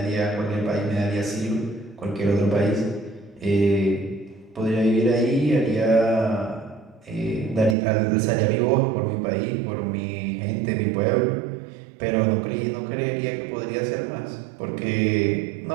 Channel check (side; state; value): left; drops out; at 7.8 s